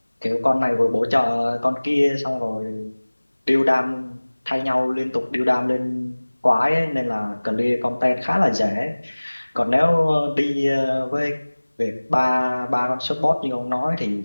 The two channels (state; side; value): inverted; both; correlation -1.00